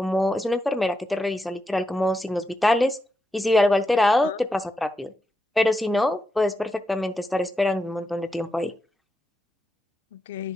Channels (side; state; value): both; normal; correlation 0.87